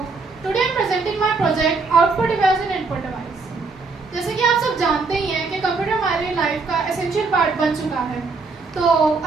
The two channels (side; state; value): left; quieter; 4.2 dB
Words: today I am presenting my project output device and input device. जैसे कि आप सब जानते ही हैं कि computer हमारी life का essential part बन चुका है, तो